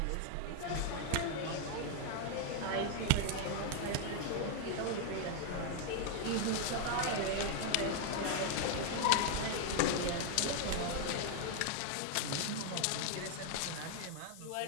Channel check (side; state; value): both; different; correlation 0.00